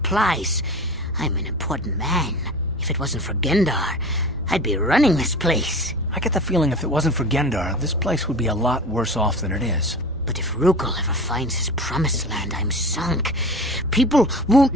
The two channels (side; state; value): both; normal; correlation 0.35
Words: I'm an important man. If it wasn't for Gendar, I'd be running this place. I get the feeling if it wasn't for Gendar, this place would be a lot worse off than it is. But if Rukel ever finds his Promised Land, I'm sunk. People won't